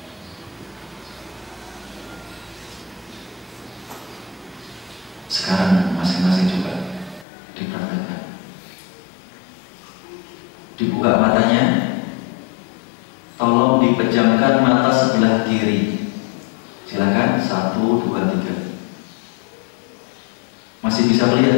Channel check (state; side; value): drops out; right; at 7.2 s